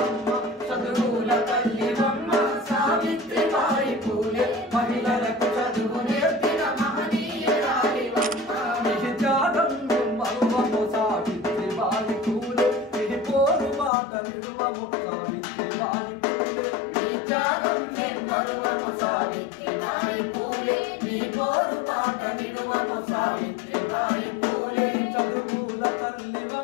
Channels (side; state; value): right; drops out; at 13.9 s